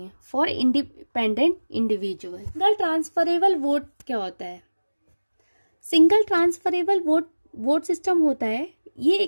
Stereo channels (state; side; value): inverted; both; correlation -1.00